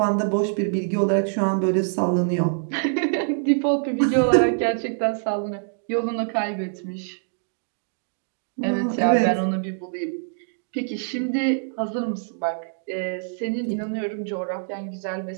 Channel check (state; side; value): silent; left; digital silence